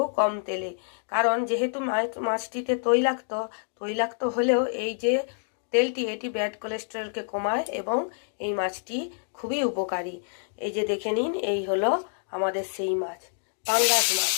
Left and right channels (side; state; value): right; silent; digital silence